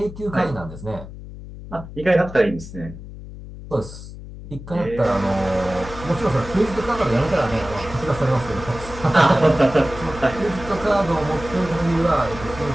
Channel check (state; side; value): noise; left; hum, 13 dB below the sound